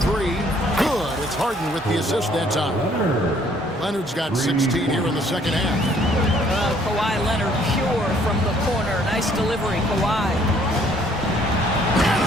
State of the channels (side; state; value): both; normal; correlation 0.62